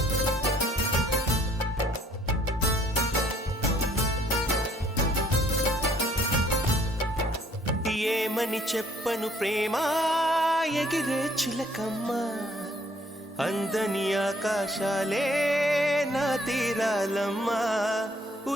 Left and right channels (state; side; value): normal; both; correlation 0.62